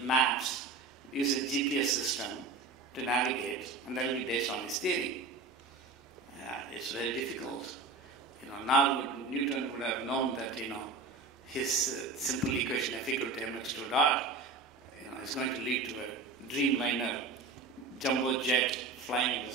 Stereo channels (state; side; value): quieter; left; 4.0 dB